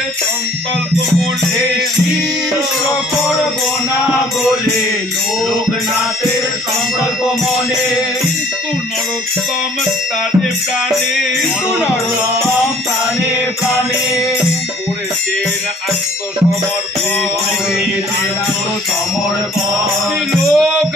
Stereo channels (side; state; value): both; normal; correlation 0.56